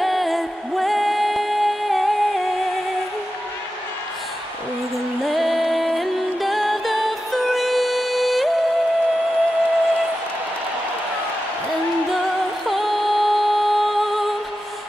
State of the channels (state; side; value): normal; both; correlation 0.92